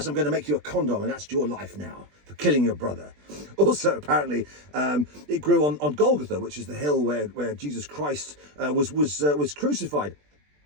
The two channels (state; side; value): late; left; 20 ms